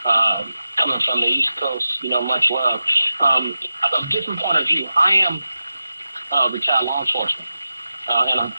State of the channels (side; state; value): both; inverted; correlation -0.92